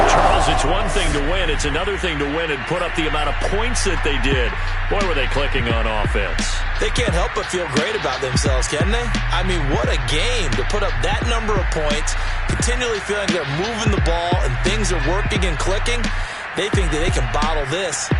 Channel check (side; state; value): both; identical; correlation 1.00